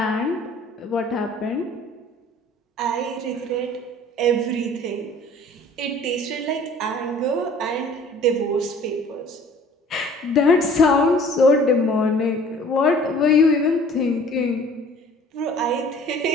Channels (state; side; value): normal; both; correlation 0.50